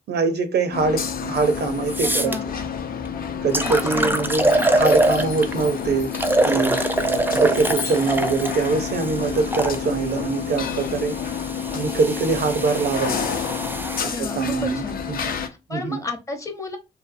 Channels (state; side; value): normal; both; correlation 0.51